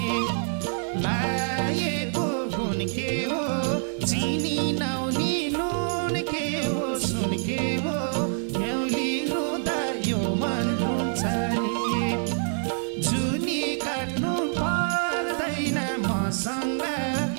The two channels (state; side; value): silent; left; digital silence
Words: लाएको गुण के हो चिनी नौनी नुन के हो सुन के हो न्याउली रुँदा यो मन रुन्छ नि जुनी काट्नु पर्दैन मसँग